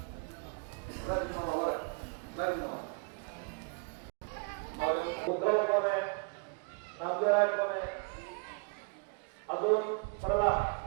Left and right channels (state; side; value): quieter; left; 36.2 dB